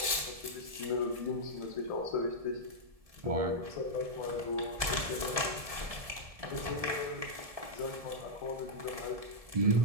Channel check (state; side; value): late; left; 1.7 ms